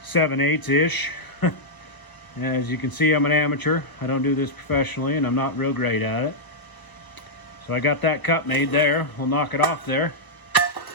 7/8-ish. As you can see, I'm an amateur. I don't do this professionally, and I'm not real great at it. So I got that cut made there. We'll knock it off there.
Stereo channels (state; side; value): late; right; 1.2 ms